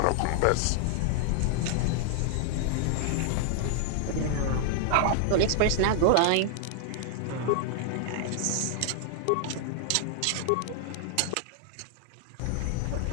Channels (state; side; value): different; both; correlation -0.01